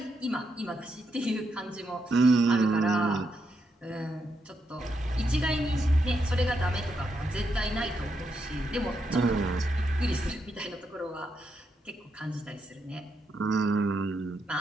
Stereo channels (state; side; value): normal; both; correlation 0.81